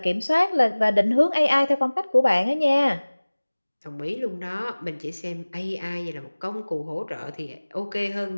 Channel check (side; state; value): both; inverted; correlation -1.00